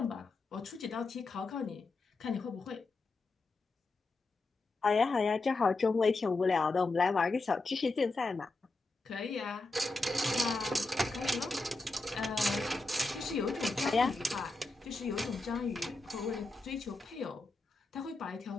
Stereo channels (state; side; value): quieter; right; 3.3 dB